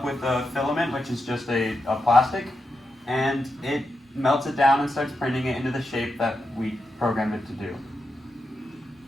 with a filament, which is just a plastic, and it melts it down and starts printing it into the shape that we programmed it to do.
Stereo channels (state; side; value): normal; both; correlation 0.87